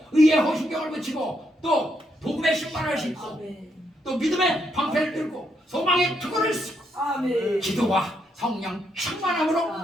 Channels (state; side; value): normal; both; correlation 0.77